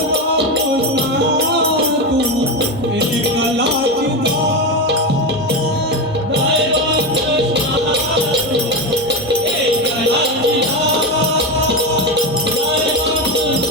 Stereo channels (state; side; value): normal; both; correlation 0.16